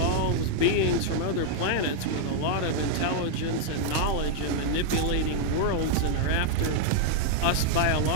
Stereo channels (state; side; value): different; both; correlation 0.00